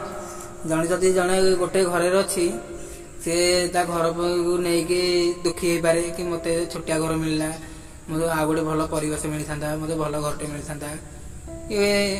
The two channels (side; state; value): both; identical; correlation 1.00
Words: जड़े जदि जड़े गोटे घरे अच्छी सी ता घर को नहीं दुखी हो पारे कि मत छोटिया घर मिलला, मतलब आ गए भल परिवेश मिल था, मतलब भल घरटे मिल था